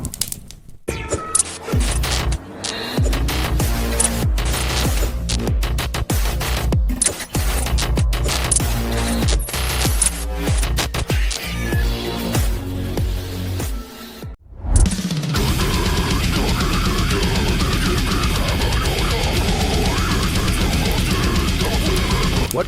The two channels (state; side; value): identical; both; correlation 1.00